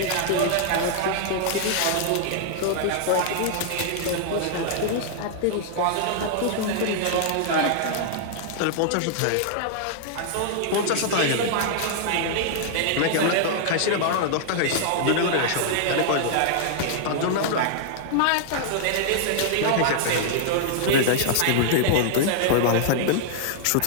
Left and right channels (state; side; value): different; both; correlation -0.01